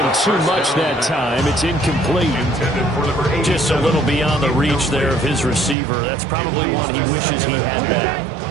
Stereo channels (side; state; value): left; drops out; at 5.8 s